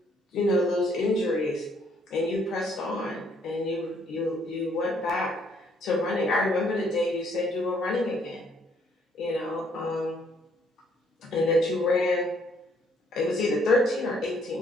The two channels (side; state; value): both; normal; correlation 0.67